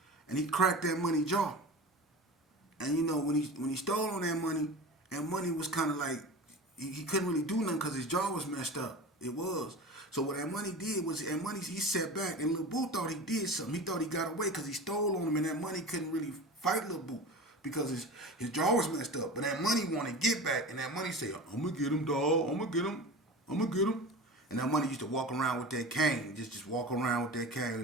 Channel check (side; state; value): both; normal; correlation 0.32